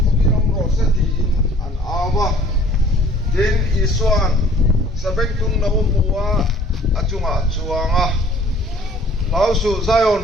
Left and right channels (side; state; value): both; normal; correlation 0.53